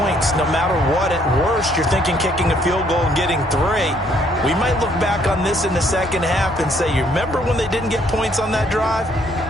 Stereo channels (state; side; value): normal; both; correlation 0.66